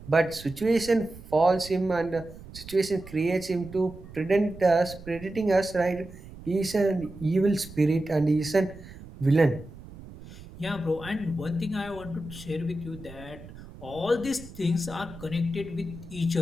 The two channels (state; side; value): noise; right; rumble, 16 dB below the sound